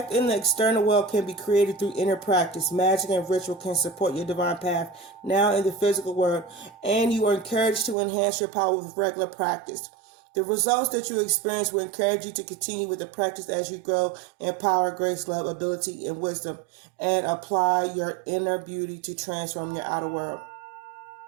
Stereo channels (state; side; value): drops out; left; at 8.0 s